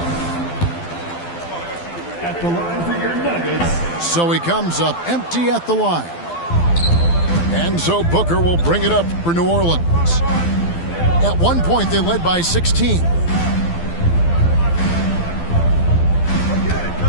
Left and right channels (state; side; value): late; right; 12 ms